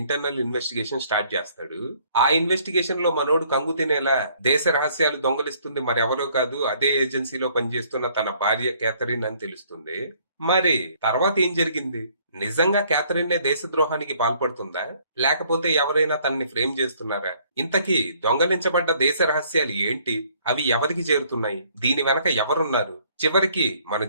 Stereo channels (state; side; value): inverted; both; correlation -0.62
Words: ఇన్వెస్టిగేషన్ స్టార్ట్ చేస్తాడు. ఆ ఇన్వెస్టిగేషన్ లో మనోడు కంగు తినేలా దేశ రహస్యాలు దొంగలిస్తుంది మరెవరో కాదు, అదే ఏజెన్సీలో పనిచేస్తున్న తన భార్య క్యాథరిన్ అని తెలుస్తుంది. మరి తర్వాత ఏం జరిగింది? నిజంగా క్యాథరిన్ దేశద్రోహానికి పాల్పడుతుందా, లేకపోతే ఎవరైనా తనని ఫ్రేమ్ చేస్తున్నారా? ఇంతకీ దొంగలించబడ్డ దేశ రహస్యాలు ఏంటి? అవి ఎవరికి చేరుతున్నాయి? దీని వెనక ఎవరున్నారు? చివరికి మన